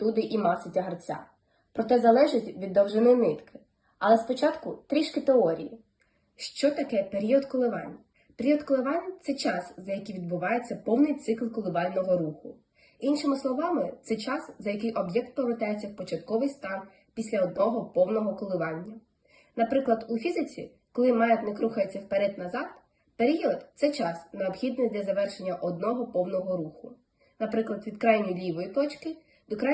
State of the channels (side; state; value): both; identical; correlation 1.00